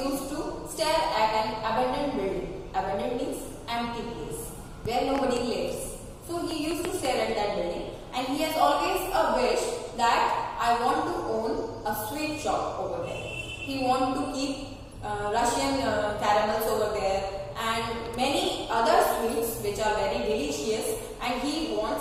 to stare at an abandoned building. Abandoned means empty place where nobody lives. So he used to stare at that building, and he has always a wish that I want to own a sweet shop over there. He wants to keep Russian caramels over there and many other sweets which are very delicious, and he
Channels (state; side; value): identical; both; correlation 1.00